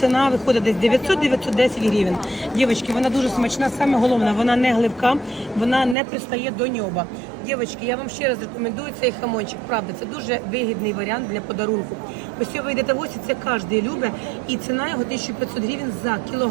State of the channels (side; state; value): left; drops out; at 6.0 s